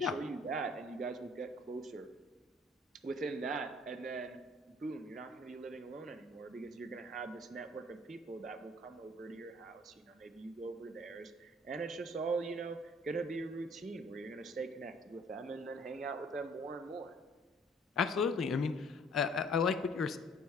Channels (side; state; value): both; normal; correlation 0.57